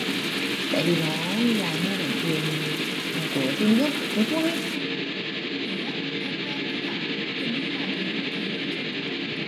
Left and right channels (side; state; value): both; identical; correlation 1.00